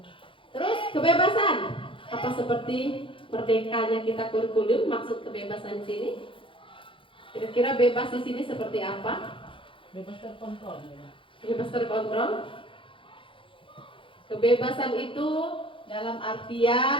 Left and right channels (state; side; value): late; right; 0.25 ms